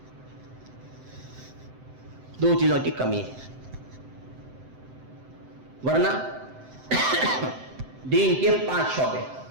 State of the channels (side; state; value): left; late; 7.8 ms